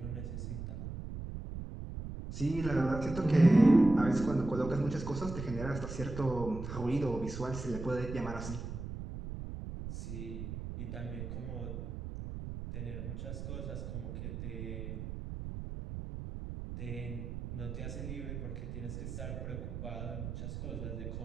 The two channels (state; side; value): noise; right; rumble, 7 dB below the sound